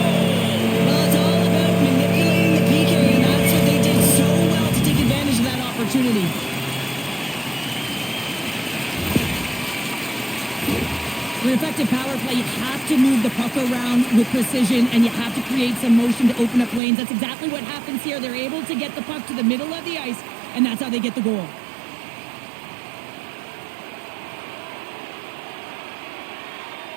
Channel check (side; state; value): left; drops out; at 16.8 s